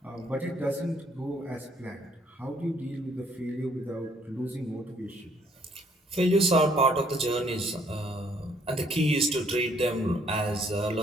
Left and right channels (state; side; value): normal; both; correlation 0.65